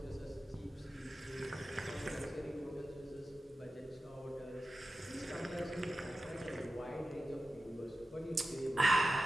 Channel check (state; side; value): normal; both; correlation 0.94